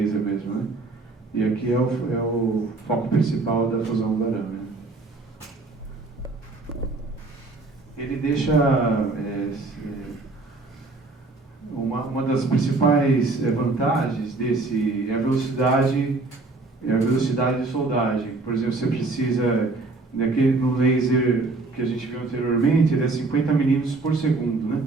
mesmo, né? E aqui é o foco principal da fusão do arame, né? Ele deixa uma das principais vantagens desse é a velocidade de soldagem. Por exemplo, você precisa no laser que a gente viu anteriormente, ele é 50 milímetros por segundo, né?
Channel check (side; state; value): left; quieter; 3.4 dB